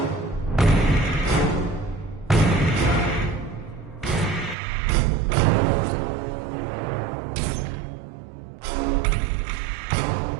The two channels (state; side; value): drops out; left; at 4.5 s